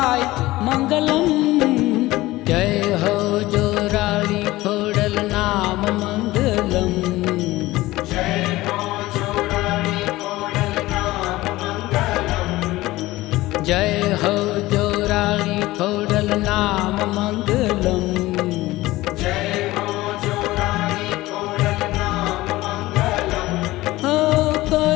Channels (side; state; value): right; quieter; 18.2 dB